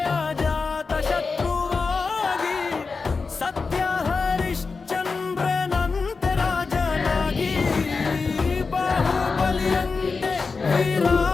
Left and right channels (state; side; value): quieter; right; 4.5 dB